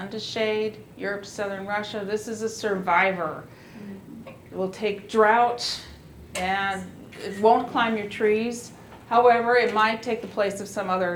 to shade, Europe, southern Russia. This is a survivor. It will take drought and it won't climb your trees. However, it might take the place of some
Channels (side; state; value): both; identical; correlation 1.00